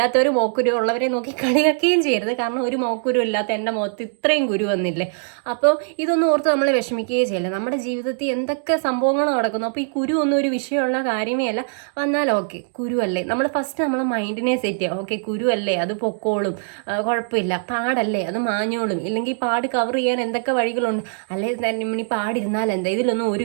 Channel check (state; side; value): silent; left; digital silence